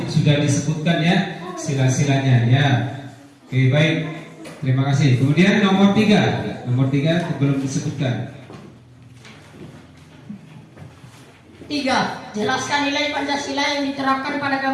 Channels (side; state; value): both; identical; correlation 1.00